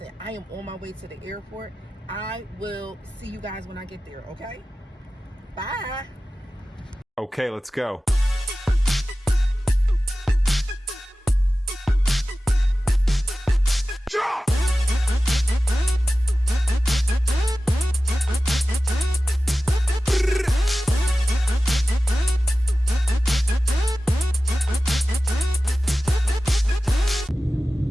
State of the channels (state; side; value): normal; both; correlation 0.95